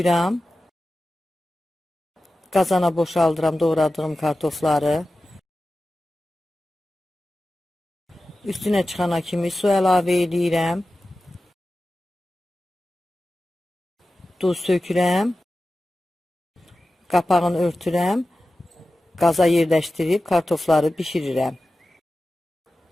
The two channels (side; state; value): both; normal; correlation 0.94